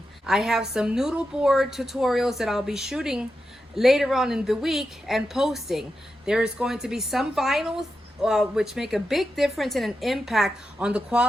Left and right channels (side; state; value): both; normal; correlation 0.89